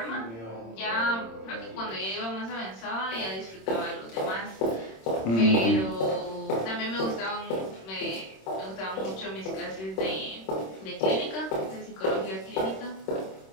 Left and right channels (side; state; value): right; late; 26 ms